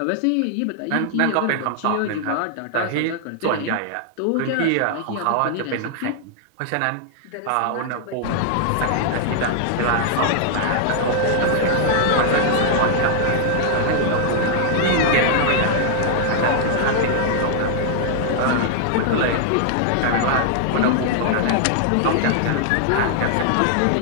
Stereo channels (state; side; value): different; both; correlation -0.01